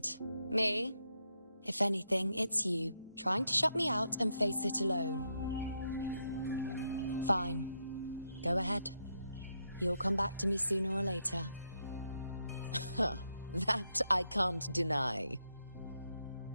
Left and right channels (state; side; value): inverted; both; correlation -0.81